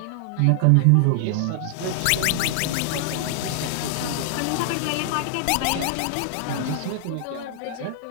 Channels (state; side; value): different; both; correlation 0.00